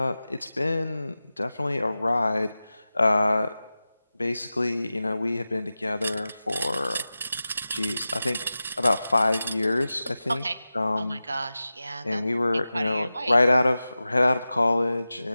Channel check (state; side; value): inverted; both; correlation -0.95